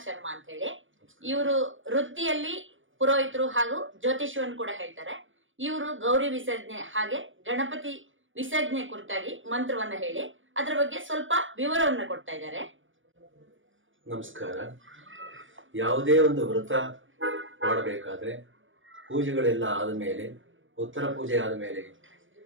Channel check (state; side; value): late; left; 0.57 ms